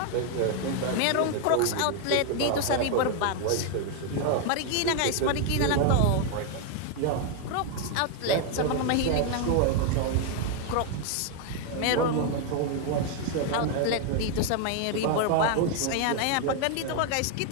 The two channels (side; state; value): both; different; correlation 0.01